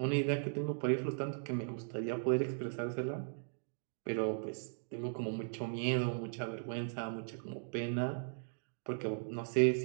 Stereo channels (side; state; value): left; silent; digital silence